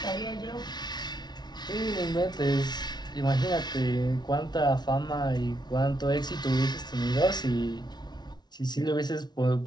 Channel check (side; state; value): right; late; 0.20 ms